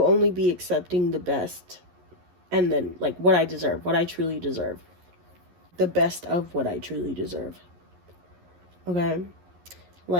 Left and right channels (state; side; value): late; left; 11 ms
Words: best, and then like what I deserve, what I truly deserve. The best of what I truly deserve. Okay?